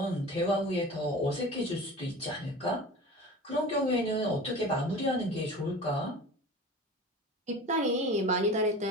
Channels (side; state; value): both; normal; correlation 0.36